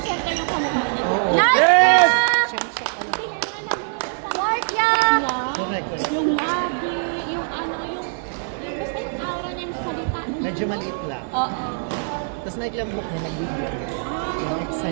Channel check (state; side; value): silent; left; digital silence